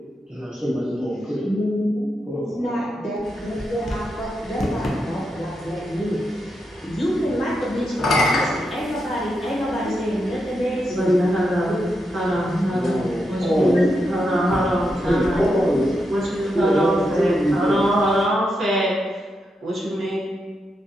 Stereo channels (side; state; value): both; normal; correlation 0.84